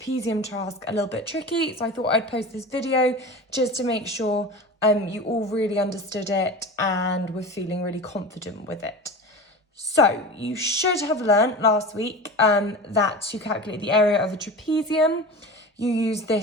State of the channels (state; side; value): normal; both; correlation 0.31